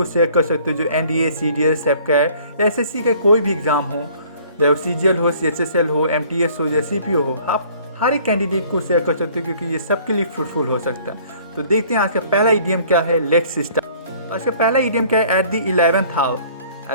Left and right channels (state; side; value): inverted; both; correlation -0.55